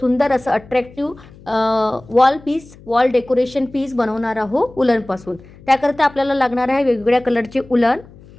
असं अट्रॅक्टिव्ह वॉल डेकोरेशन पीस बनवणार आहोत उलनपासून. त्याकरता आपल्याला लागणार आहे वेगवेगळ्या कलरचे उलन.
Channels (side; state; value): left; noise; hum, 22 dB below the sound